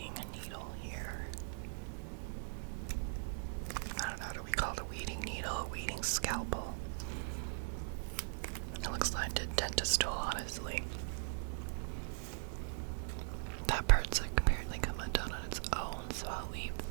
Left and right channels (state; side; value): silent; left; digital silence